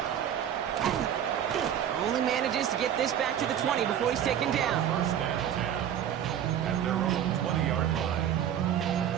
Only manages to get this back to the 20 before he's taken down. First and 10 at their own 20-yard line.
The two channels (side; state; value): left; quieter; 9.9 dB